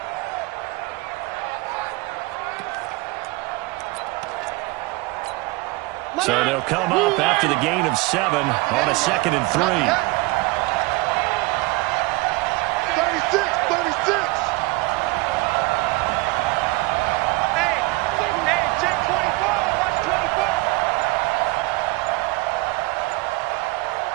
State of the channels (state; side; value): quieter; left; 23.5 dB